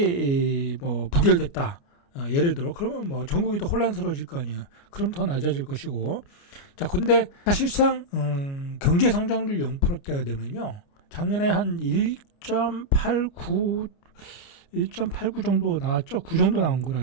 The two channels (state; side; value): late; right; 29 ms